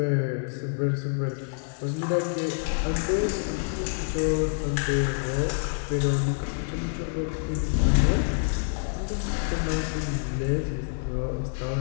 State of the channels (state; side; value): silent; right; digital silence